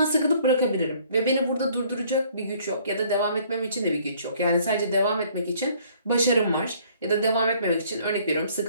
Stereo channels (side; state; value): both; inverted; correlation -0.59